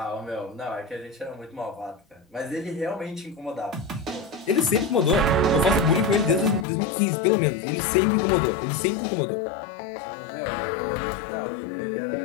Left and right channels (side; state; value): right; drops out; at 6.7 s